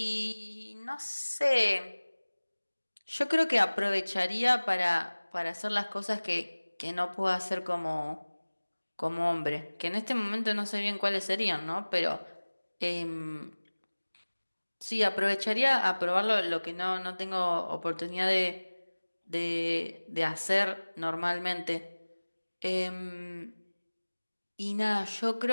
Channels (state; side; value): inverted; both; correlation -1.00